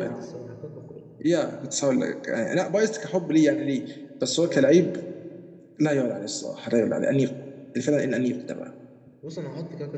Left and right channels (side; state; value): both; identical; correlation 1.00